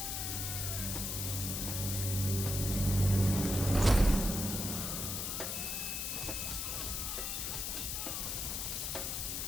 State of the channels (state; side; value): noise; left; hiss, 2 dB below the sound